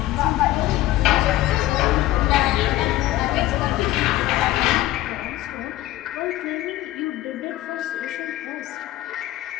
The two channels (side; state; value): right; quieter; 15.7 dB